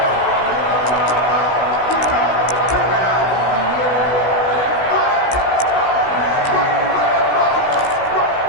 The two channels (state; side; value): late; right; 16 ms